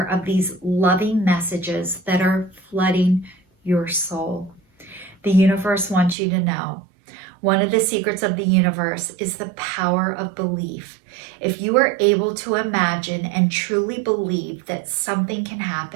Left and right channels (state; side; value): drops out; left; at 6.2 s